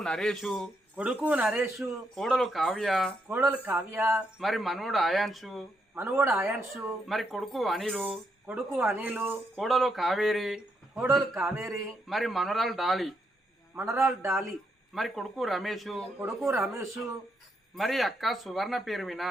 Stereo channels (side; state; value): both; normal; correlation 0.79